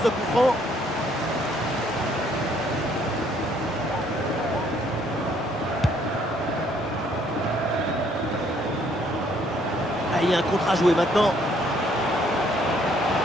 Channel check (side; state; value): both; normal; correlation 0.65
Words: coup franc. Ah, il y a un contre à jouer maintenant.